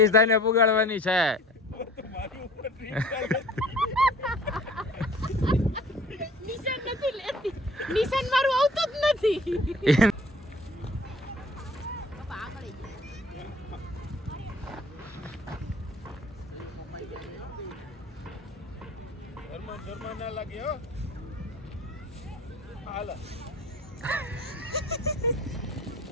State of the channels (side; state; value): both; normal; correlation 0.49